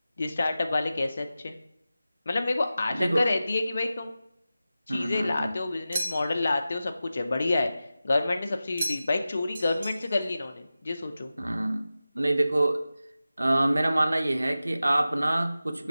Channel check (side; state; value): both; inverted; correlation -0.94